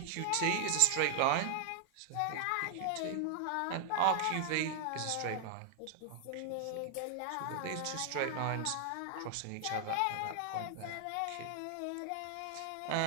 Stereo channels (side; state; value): both; different; correlation 0.00